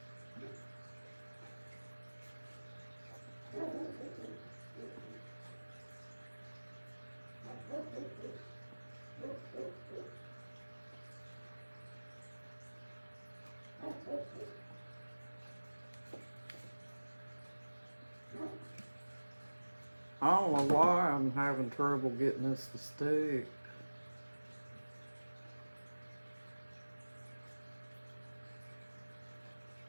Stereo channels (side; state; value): both; inverted; correlation -1.00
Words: I don't know why I'm having trouble getting this to stick.